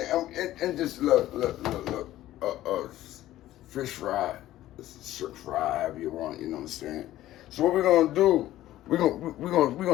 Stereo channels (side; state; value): right; quieter; 14.4 dB